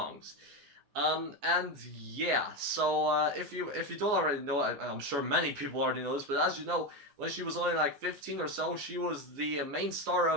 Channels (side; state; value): left; late; 14 ms